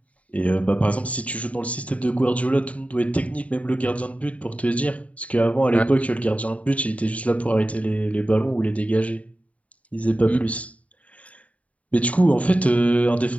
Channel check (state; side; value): late; right; 0.067 ms